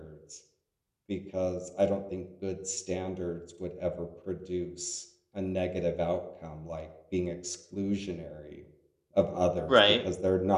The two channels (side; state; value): both; identical; correlation 1.00